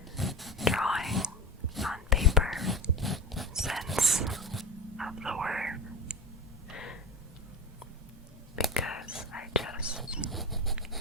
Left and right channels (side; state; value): both; normal; correlation 0.27